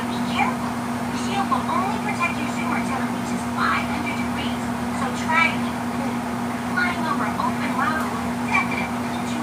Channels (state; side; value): identical; both; correlation 1.00